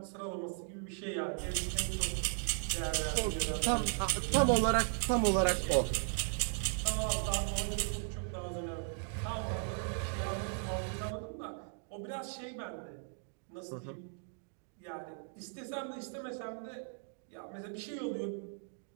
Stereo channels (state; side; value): silent; left; 53 dB below the other